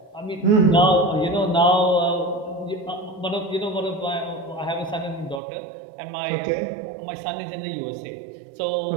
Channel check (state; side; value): drops out; left; at 5.4 s